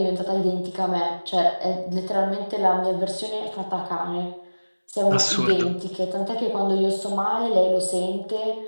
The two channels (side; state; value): both; inverted; correlation -1.00